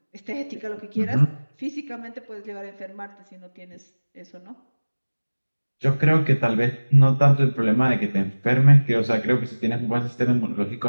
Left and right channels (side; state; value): both; inverted; correlation -1.00